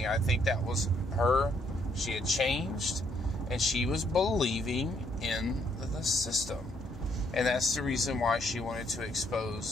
I think that was her. She had changed, and she was believing in the system. And that's the reason why she wanted to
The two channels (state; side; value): normal; both; correlation 0.70